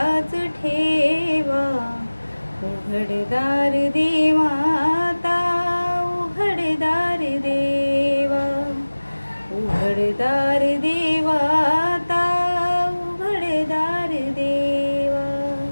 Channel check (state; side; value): inverted; both; correlation -1.00